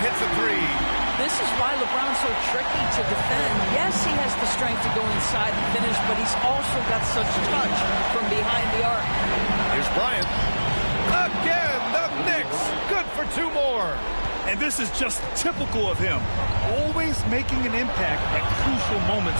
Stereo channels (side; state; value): both; inverted; correlation -1.00